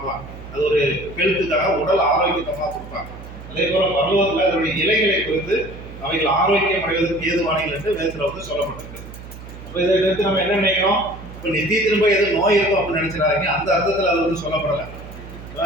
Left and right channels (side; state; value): right; noise; hum, 14 dB below the sound